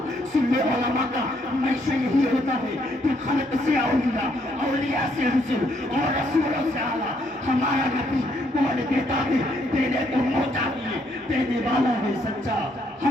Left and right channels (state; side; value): normal; both; correlation 0.71